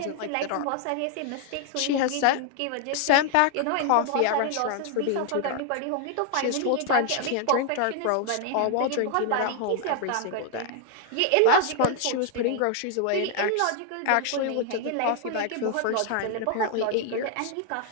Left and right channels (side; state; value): both; different; correlation 0.00